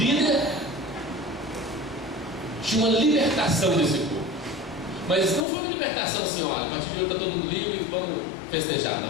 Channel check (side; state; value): right; drops out; at 5.5 s